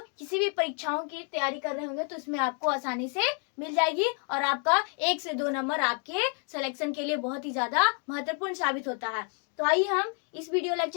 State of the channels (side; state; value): right; quieter; 39.5 dB